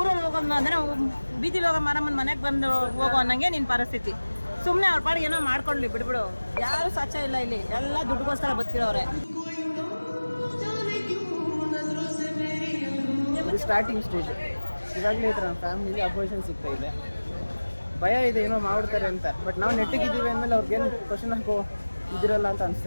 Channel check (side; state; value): both; inverted; correlation -1.00